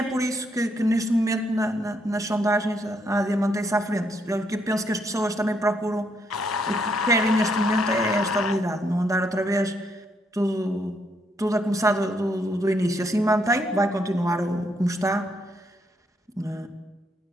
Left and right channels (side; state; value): both; normal; correlation 0.75